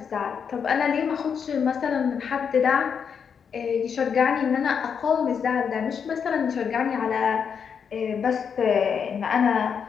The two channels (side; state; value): right; quieter; 6.9 dB